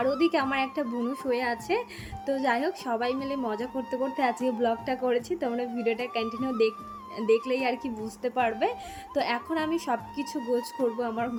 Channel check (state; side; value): identical; both; correlation 1.00